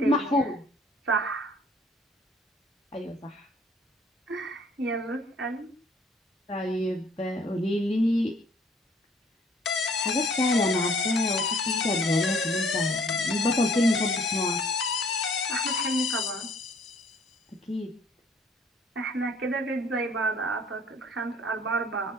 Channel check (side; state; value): both; normal; correlation 0.57